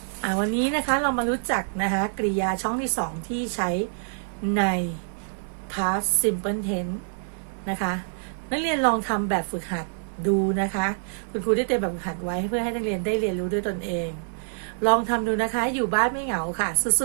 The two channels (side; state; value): left; silent; digital silence